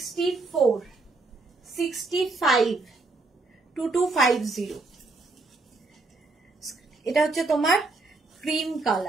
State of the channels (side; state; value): left; quieter; 3.4 dB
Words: 65, 2250। এটা হচ্ছে তোমার ক্রিম